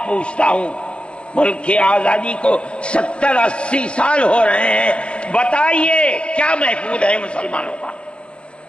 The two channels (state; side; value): late; right; 0.058 ms